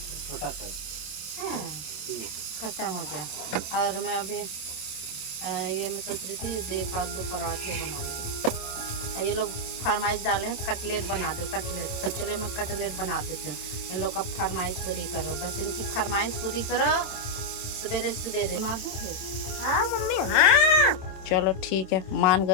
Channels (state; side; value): late; right; 27 ms